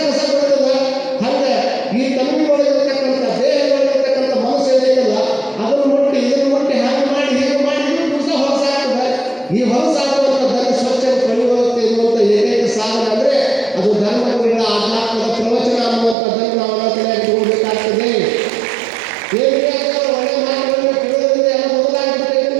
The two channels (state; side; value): drops out; left; at 16.2 s